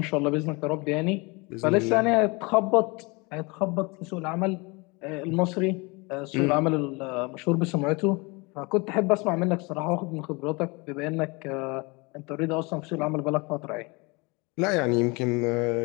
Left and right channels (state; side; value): quieter; right; 27.4 dB